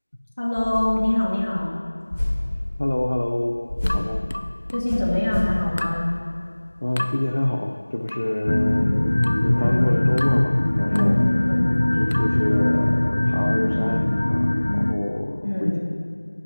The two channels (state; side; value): inverted; both; correlation -1.00